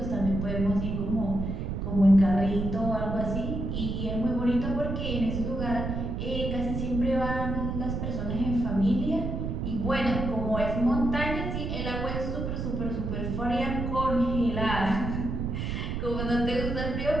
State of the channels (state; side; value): noise; right; rumble, 3 dB below the sound